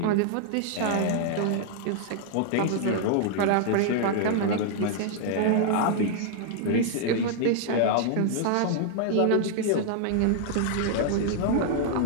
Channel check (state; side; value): different; both; correlation -0.01